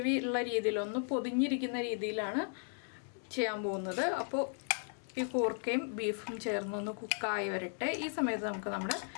ഉള്ള രീതിയിൽ ഒന്ന് പൊതിഞ്ഞിരിക്കുന്ന രീതിയിലാണ് ചെയ്യാൻ പോകുന്നത്. അപ്പോൾ ഈ കൂർക്കയും ബീഫും ചേർന്നൊന്ന് കുക്കായി വരട്ടെ. ഈ സമയത്ത് നമുക്ക് നമ്മുടെ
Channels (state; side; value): silent; right; 54 dB below the other